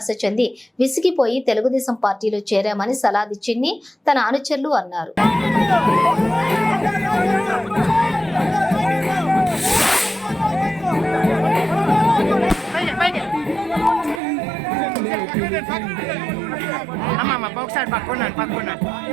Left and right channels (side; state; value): left; drops out; at 14.2 s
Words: చెంది విసిగిపోయి తెలుగుదేశం పార్టీలో చేరామని సలాది చిన్ని తన అనుచరులు అన్నారు.